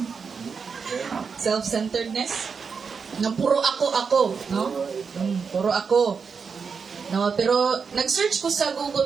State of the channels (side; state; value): left; quieter; 5.7 dB